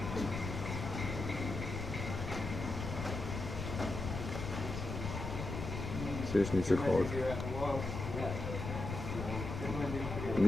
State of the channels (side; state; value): left; noise; rumble, 5 dB below the sound